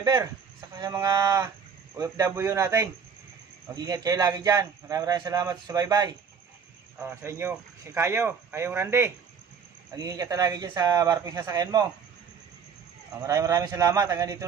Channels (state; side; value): quieter; left; 6.4 dB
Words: saka sa mga OFW natin. Mag-ingat kayo lagi dyan. Maraming salamat sa bye-bye. Sa inyo, si Kayong Randy. Mag-ingat ka lagi dyan sa barkong sasakyan mo. Maraming salamat. Hanggang dito